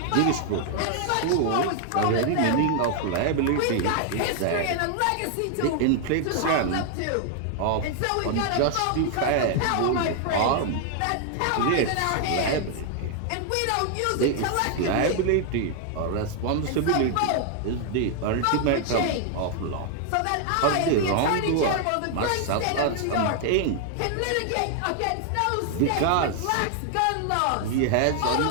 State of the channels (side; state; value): both; different; correlation 0.00